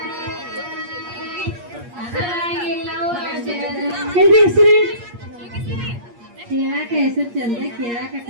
ಕೇಳಾಕ ಹೆಸರು ಚಂದ, ಕೇಳಾಕ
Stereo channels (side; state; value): left; late; 8.5 ms